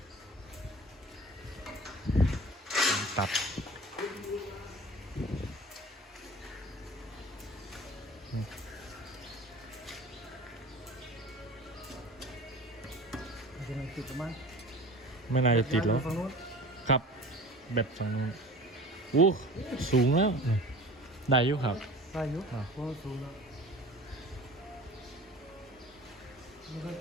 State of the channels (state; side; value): normal; both; correlation 0.40